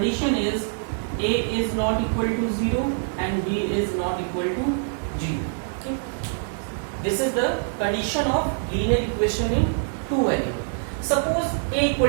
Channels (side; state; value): left; silent; 62 dB below the other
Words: is a is not equal to 0 and b is not equal to 0. Okay, this is the condition of linear equation in two variable. Suppose a